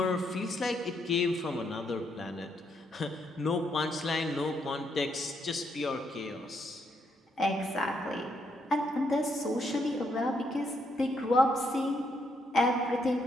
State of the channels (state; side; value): normal; both; correlation 0.76